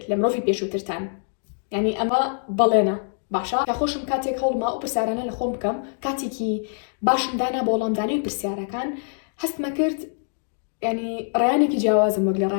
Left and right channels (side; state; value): right; silent; digital silence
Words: لە مرۆڤی پێشووترتان. یعنی ئەمە بەڵێنە. باشە کە خۆشم کاتێک هەوڵما ئەو پرسیارانە لە خۆم بکەم کاتێکی باشم دانا بۆ وەڵامدانی پرسیارەکان هەستمە کرد ینی ڕیانێکی جیاوازم وەک لە